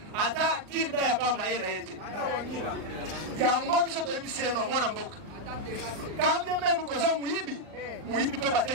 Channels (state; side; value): late; left; 39 ms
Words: ata kirda ya pa mayele yete yango biso to biso no mwana mboka kambye même ko za muyibi pe bate